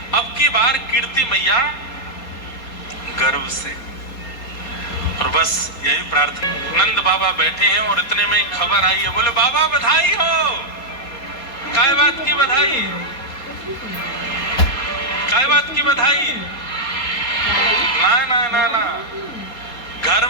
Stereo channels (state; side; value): late; right; 4.3 ms